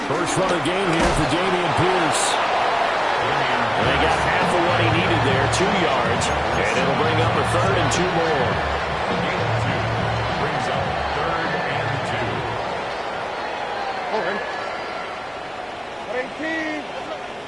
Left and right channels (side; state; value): both; identical; correlation 1.00